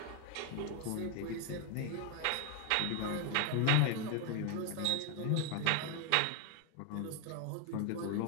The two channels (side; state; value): both; different; correlation 0.01